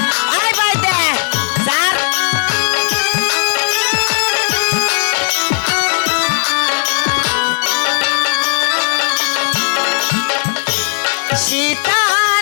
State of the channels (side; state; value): right; silent; digital silence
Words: আয় ভাই দে স্যার